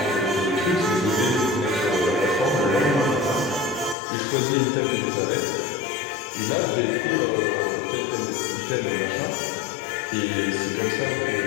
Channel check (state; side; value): drops out; right; at 4.0 s